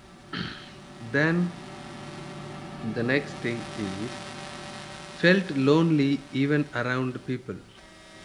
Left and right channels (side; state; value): both; identical; correlation 1.00